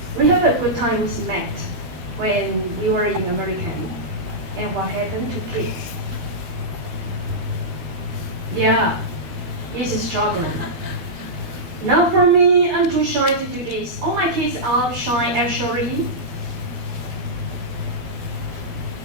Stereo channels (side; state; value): left; late; 12 ms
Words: We have a good time with math when we were in American. And what happened to kids? Yeah, this is struggling. Not for me, I'm too shy to do this. All my kids are shy actually.